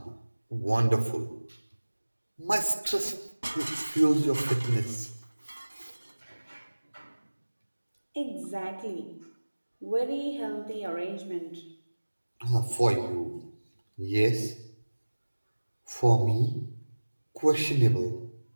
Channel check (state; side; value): inverted; both; correlation -1.00